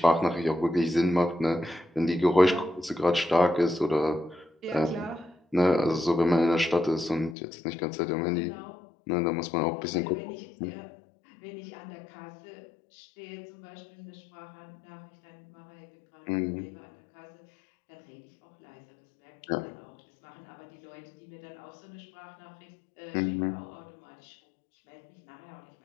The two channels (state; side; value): drops out; right; at 7.4 s